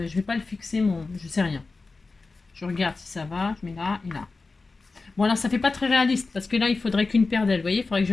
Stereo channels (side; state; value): right; quieter; 3.9 dB